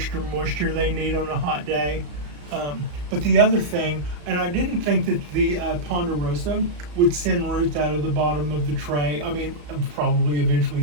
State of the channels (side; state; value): left; late; 34 ms